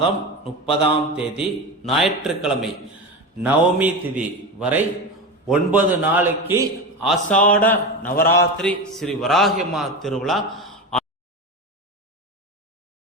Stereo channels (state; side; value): normal; both; correlation 0.22